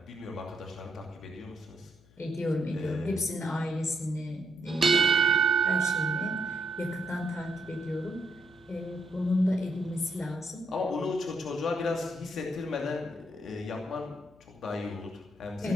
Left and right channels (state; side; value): noise; left; hum, 28 dB below the sound